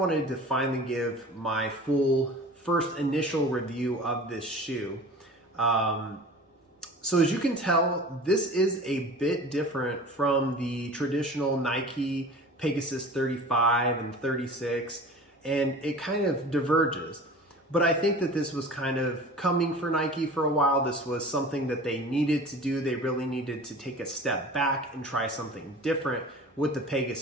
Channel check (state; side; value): normal; both; correlation 0.40